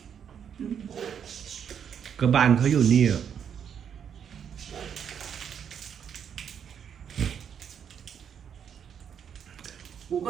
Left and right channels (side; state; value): left; quieter; 8.1 dB